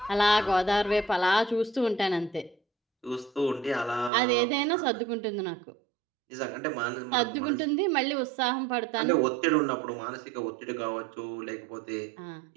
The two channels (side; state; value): left; drops out; at 4.1 s